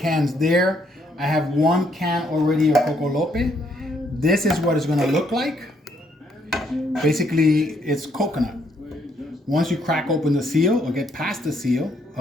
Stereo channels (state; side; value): normal; both; correlation 0.71